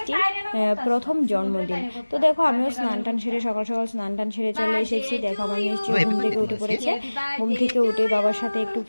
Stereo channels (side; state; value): both; inverted; correlation -1.00